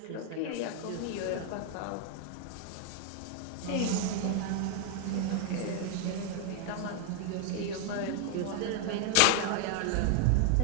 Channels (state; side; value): different; both; correlation 0.00